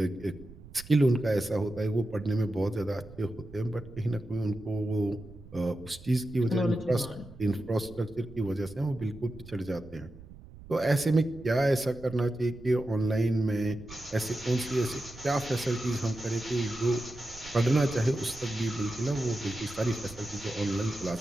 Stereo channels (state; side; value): noise; right; rumble, 18 dB below the sound